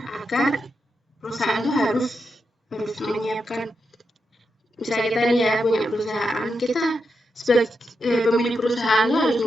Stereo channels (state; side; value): normal; both; correlation 0.85